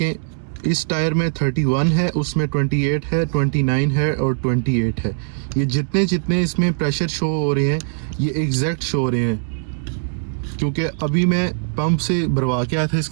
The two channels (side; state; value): left; silent; digital silence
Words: इस टायर में 31 है, उसमें 28 है, 29 है और 28 है। ये जितने इसमें प्रेशर शो हो रहे हैं ये एग्जैक्ट शो हो रहे हैं, क्योंकि अभी मैं पंप से भरवा के आया था,